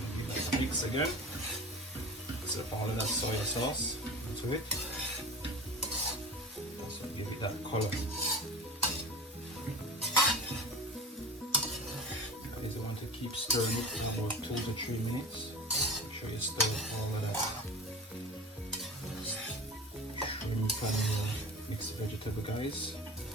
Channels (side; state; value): both; normal; correlation 0.35